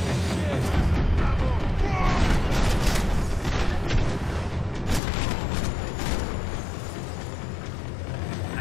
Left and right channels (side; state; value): right; drops out; at 5.0 s